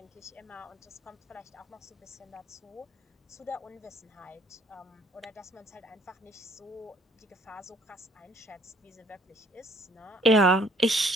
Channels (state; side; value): normal; both; correlation 0.60